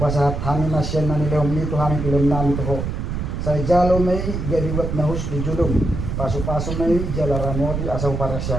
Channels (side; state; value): right; noise; rumble, 3 dB below the sound